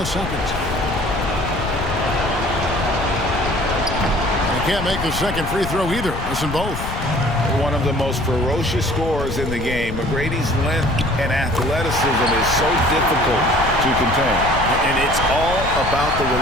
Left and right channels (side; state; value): left; noise; rumble, 6 dB below the sound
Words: second. Can't make the second free throw either. Missing both. One of the most ferocious scorers in the game. McGrady's length and athleticism is so difficult to contain. And it's all about the